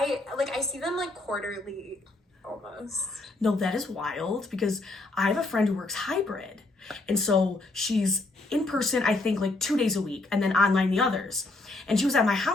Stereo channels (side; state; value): right; quieter; 3.0 dB